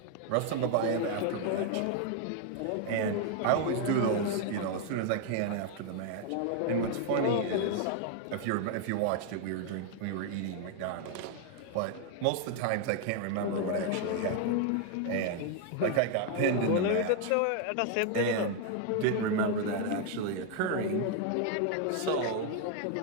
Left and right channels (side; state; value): both; different; correlation 0.00